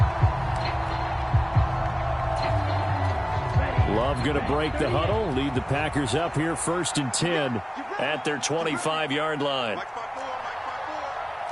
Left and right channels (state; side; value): identical; both; correlation 1.00